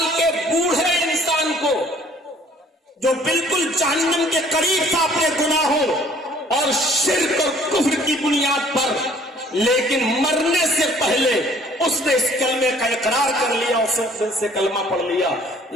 کے بوڑھے انسان کو جو بالکل جہنم کے قریب تھا اپنے گناہوں اور شرک اور کفر کی بنیاد پر، لیکن مرنے سے پہلے اس نے اس کلمے کا اقرار کر لیا، اس دل سے کلمہ پڑھ لیا،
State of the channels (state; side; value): normal; both; correlation 0.57